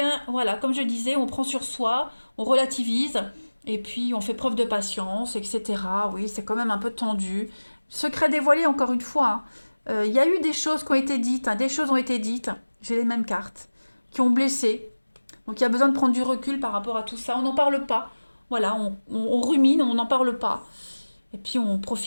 voilà, comme je disais, on prend sur soi, on relativise, et puis on fait preuve de patience, etc. Oui, c'est quand même un peu tendu. Secret dévoilé, encore une fois. Hein. Il y a eu des choses qui ont été dites, hein, des choses ont été dites, j'ai les mêmes cartes, qui ont blessé. Donc il y a besoin de prendre du recul par rapport à tout ça. On n'en parle pas. Voilà, on rumine, on n'en parle pas. Et puis on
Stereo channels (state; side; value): inverted; both; correlation -1.00